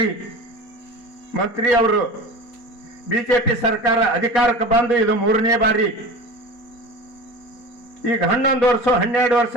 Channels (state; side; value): late; right; 4.2 ms